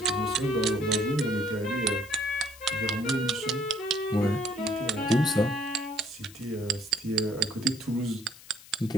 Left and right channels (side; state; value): left; noise; hiss, 20 dB below the sound